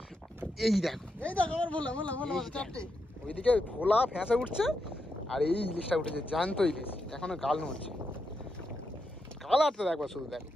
এই দেখো ওইদিকে ভোলা ফ্যাঁসা উঠছে আর এই ইলিশটা উঠেছে, জ্যান্ত ইলিশ, এখনো গাল নড়ছে। কালারটা দেখবা শুধু, দেখো।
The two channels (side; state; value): both; normal; correlation 0.84